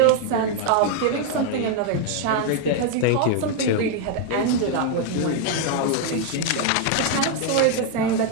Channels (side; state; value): both; different; correlation 0.00